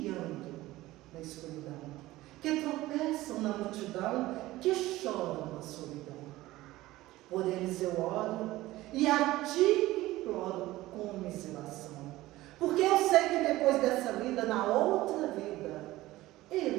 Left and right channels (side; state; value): left; quieter; 17.3 dB